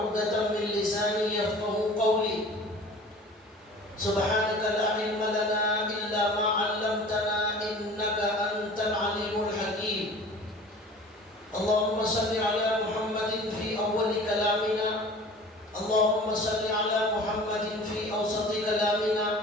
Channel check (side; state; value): both; normal; correlation 0.43